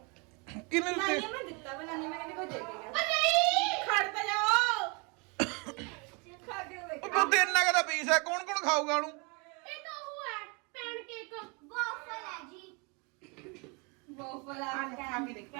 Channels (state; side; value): quieter; left; 31.5 dB